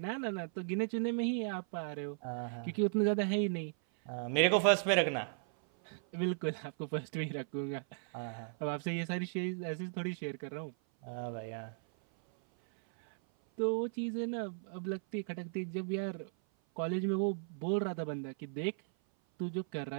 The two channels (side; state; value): left; silent; 54 dB below the other